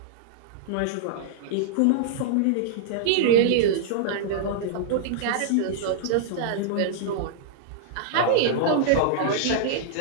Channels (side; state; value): both; different; correlation -0.02